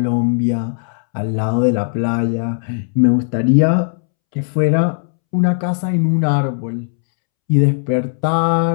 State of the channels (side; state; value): right; silent; 68 dB below the other